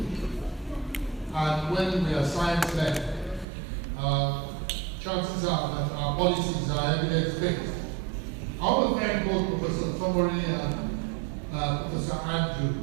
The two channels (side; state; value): left; drops out; at 3.5 s